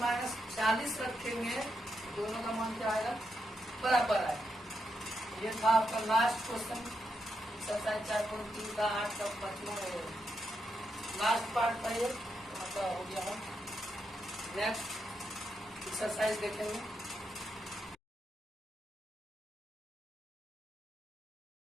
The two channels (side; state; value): both; normal; correlation 0.83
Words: रखेंगे, दोनों का मान क्या आएगा बराबर आएगा। ये था आपका लास्ट क्वेश्चन, एक्सरसाइज 4.3 का 8 का 5वां लास्ट पार्ट था ये, मतलब हो गया। हम नेक्स्ट एक्सरसाइज देखेंगे।